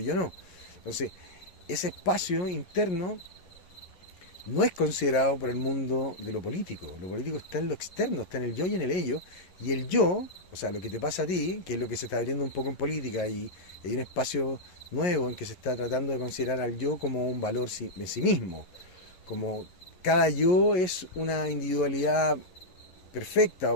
yo no. Entonces, ese espacio interno no es considerado por el mundo de lo político. Lo político está en lo externo, está en el yo y en el ello. Y el yo, o sea, lo que te pasa a ti, que es lo que se está abriendo un poco en política, y hay un espacio nuevo en que se está tratando de considerar al yo como un valor en sí mismo. Como cada yo es una individualidad perfecta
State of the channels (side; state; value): right; late; 11 ms